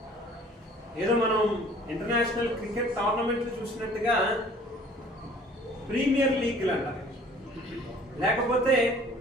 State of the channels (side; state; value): both; normal; correlation 0.51